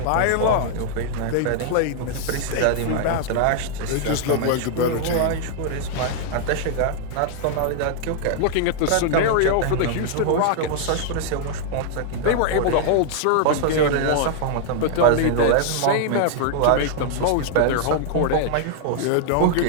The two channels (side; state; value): both; different; correlation -0.01